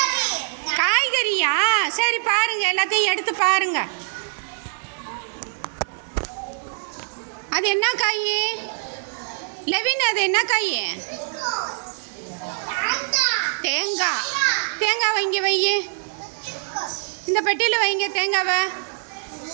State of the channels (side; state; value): left; silent; digital silence